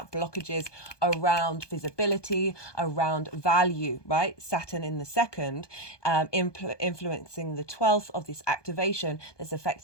blockages around visibility, around value, right? Saturn in the second, influencing the 12th of this activation that's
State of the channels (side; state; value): right; late; 1.2 ms